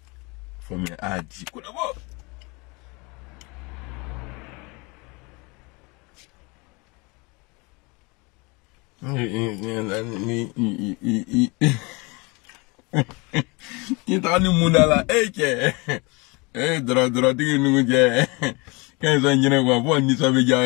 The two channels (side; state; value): right; quieter; 27.5 dB